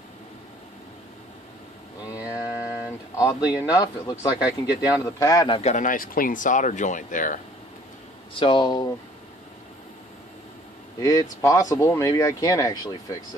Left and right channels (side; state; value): both; normal; correlation 0.56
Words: And oddly enough, it looks like I can get down to the pad and I've got a nice clean solder joint there. So it's possible maybe I can actually fix